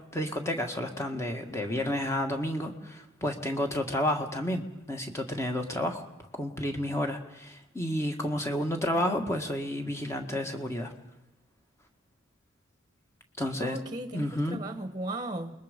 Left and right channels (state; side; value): normal; both; correlation 0.64